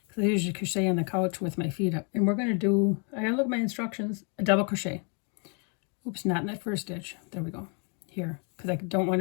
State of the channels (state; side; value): quieter; right; 37.9 dB